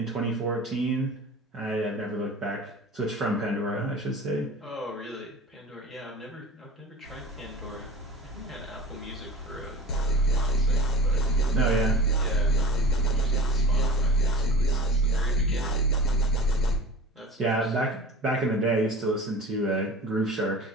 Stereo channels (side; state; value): both; normal; correlation 0.38